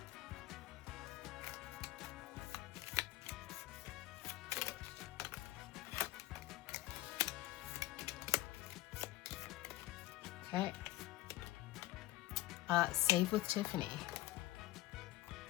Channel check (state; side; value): quieter; right; 17.0 dB